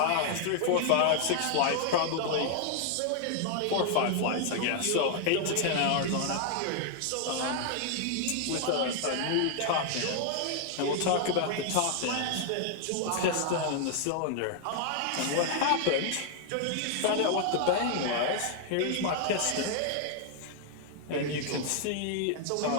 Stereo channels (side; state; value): both; different; correlation 0.00